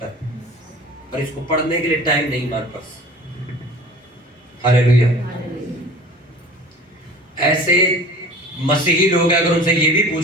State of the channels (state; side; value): normal; both; correlation 0.43